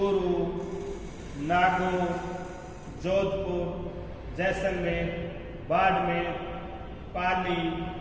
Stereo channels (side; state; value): both; identical; correlation 1.00